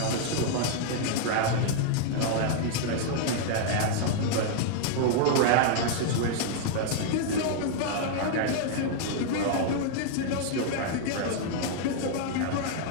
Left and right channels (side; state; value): both; different; correlation -0.01